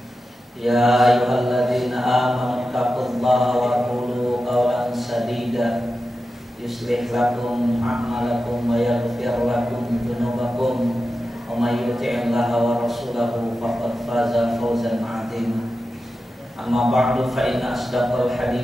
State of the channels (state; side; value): normal; both; correlation 0.92